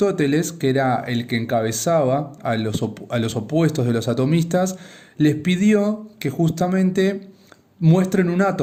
que era el que encabezaba a los opuestos de los atomistas, les pidió que justamente muestren un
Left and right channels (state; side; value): identical; both; correlation 1.00